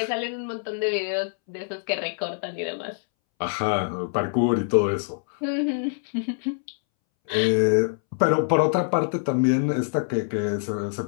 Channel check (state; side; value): silent; right; 62 dB below the other